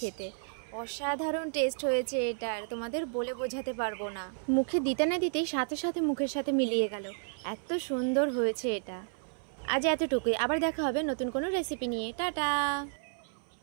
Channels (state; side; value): silent; left; 57 dB below the other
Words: খেতে। অসাধারণ টেস্ট হয়েছে এটার, তোমাদের বলে বোঝাতে পারবো না। মুখে দিতে না দিতেই সাথে সাথে মুখের সাথে মিলিয়ে গেল, এত সুন্দর হয়েছে এটা। আজ এতটুকুই, আবার দেখা হবে নতুন কোনো রেসিপি নিয়ে। টাটা।